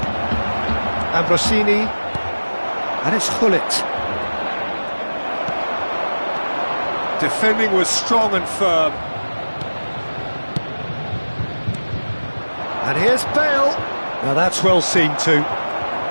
Ambrosini. And it's Gullit. Defending was strong and firm. And here's Bale. Now that's well seen too.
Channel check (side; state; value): both; inverted; correlation -1.00